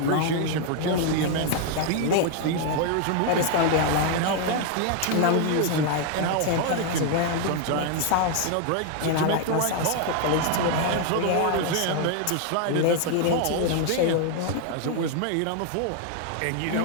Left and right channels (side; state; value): both; different; correlation 0.00